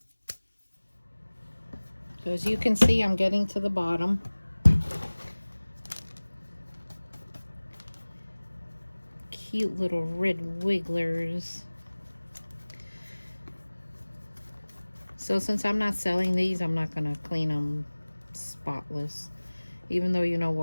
So as you can see, I'm getting to the bottom. Cute little red wigglers. So since I'm not selling these, I'm not going to clean them spotless. Even though, you know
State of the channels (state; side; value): inverted; both; correlation -1.00